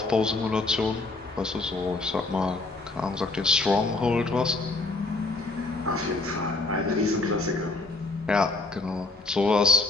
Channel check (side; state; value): right; quieter; 3.3 dB